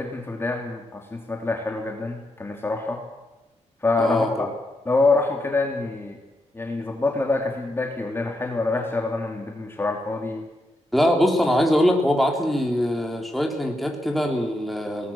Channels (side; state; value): both; normal; correlation 0.83